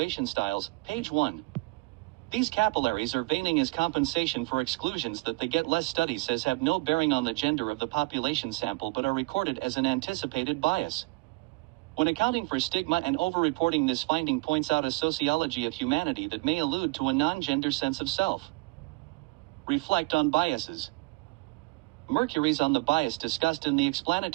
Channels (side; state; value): left; quieter; 25.0 dB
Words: styles, page 1. These capillaries are veining as compensation for exclusions that the Get Less study says have no bearing on the gender of the population sample but are recorded as an anticipated bias. When accounting for stigma and overreporting, this finding points out a sociology of humanity that may allude to a non-gender sense of self. Reflect on biases. Mercury's on the bias discussed in the